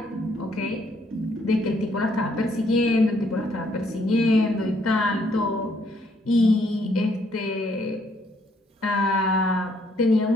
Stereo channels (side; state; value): both; normal; correlation 0.69